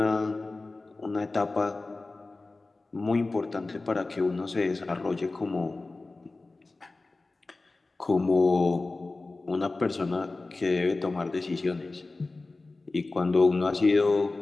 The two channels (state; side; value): quieter; right; 3.4 dB